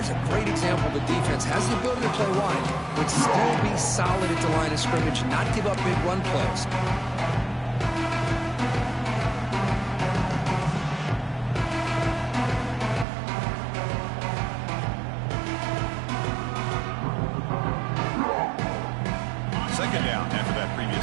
a great example. The defense has the ability to play wide, but still be solid at the line of scrimmage and not give up big run plays. Second down after that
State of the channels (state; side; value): drops out; left; at 13.1 s